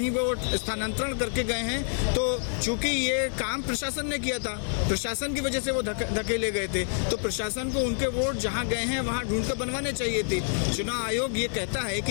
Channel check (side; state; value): right; silent; digital silence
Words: वो स्थानांतरण करके गए हैं, तो चूंकि ये काम प्रशासन ने किया था, प्रशासन की वजह से वो धकेले गए थे, तो प्रशासन को उनके वोट जहाँ गए हैं वहाँ ढूंढ कर बनवाने चाहिए थे। चुनाव आयोग ये कहता है